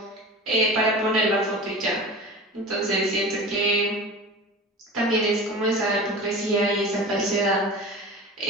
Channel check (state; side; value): normal; both; correlation 0.34